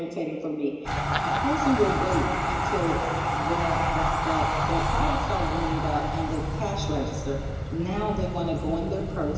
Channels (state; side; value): identical; both; correlation 1.00